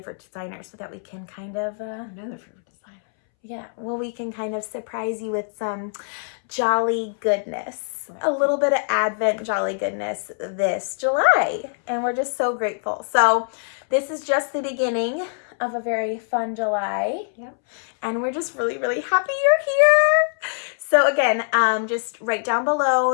designer so that we can kind of... Another favorite designer. Yeah, well, we can kind of surprise you with some jolly goodness. Right. A little bit of Advent jolly goodness this July. And we're just so grateful. So this is just the beginning of a very fun July. Yep. And we're just really, really happy you're here. So again, just write down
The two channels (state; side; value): silent; right; 63 dB below the other